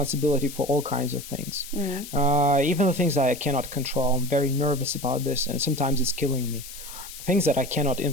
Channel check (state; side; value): noise; left; hiss, 13 dB below the sound